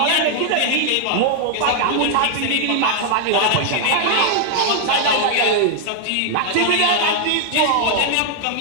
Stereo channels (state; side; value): different; both; correlation 0.00